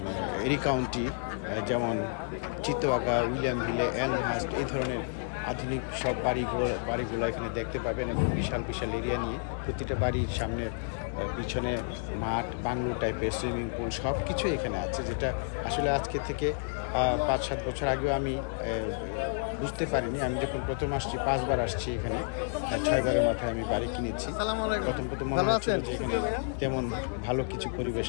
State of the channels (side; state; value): right; silent; digital silence